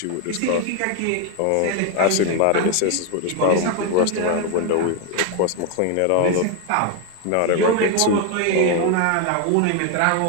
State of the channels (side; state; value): both; different; correlation 0.01